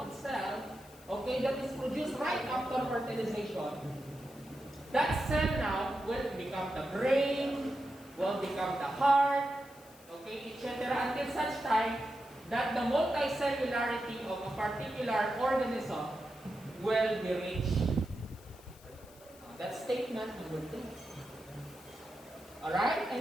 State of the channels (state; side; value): noise; left; hiss, 24 dB below the sound